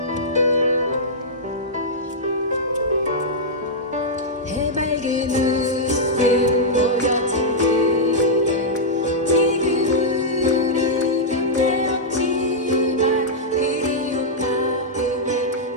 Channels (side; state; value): both; normal; correlation -0.09